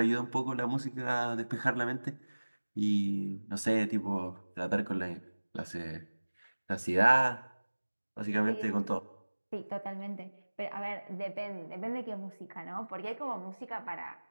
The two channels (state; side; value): inverted; both; correlation -1.00